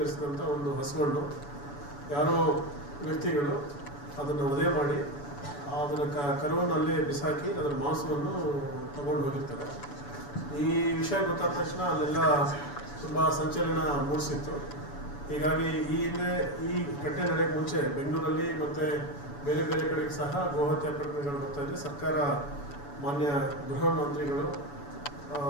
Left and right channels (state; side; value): late; right; 7.0 ms